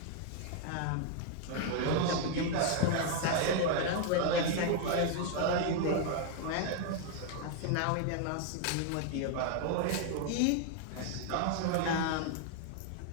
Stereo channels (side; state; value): both; different; correlation 0.00